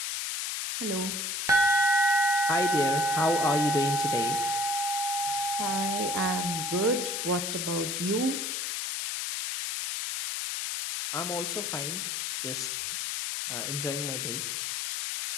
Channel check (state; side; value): noise; left; hiss, 2 dB below the sound